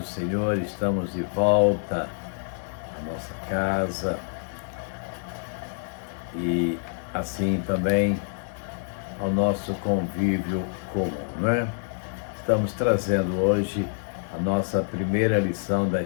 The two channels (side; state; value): right; silent; digital silence